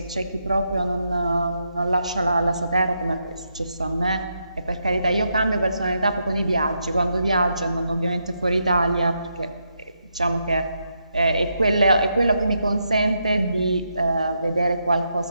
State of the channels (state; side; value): inverted; both; correlation -0.81